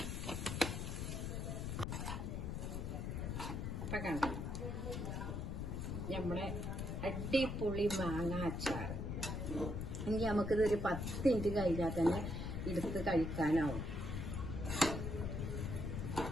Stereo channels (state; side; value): noise; left; rumble, 3 dB below the sound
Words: ഇപ്പൊ കണ്ടോ നമ്മളെ അടിപൊളി മാങ്ങ അച്ചാർ. ഇനി നമുക്കിതൊരു 10 മിനിറ്റ് കഴിഞ്ഞാൽ തന്നെ എടുത്ത് കഴിക്കാനാവും.